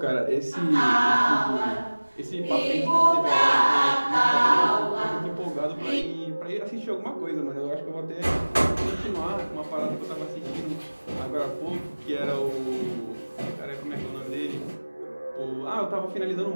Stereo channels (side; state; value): both; inverted; correlation -1.00